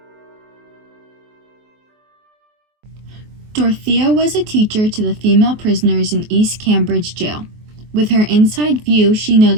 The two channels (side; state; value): left; late; 23 ms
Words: Dorothea was a teacher to the female prisoners in East Cambridge Jail. With her inside view, she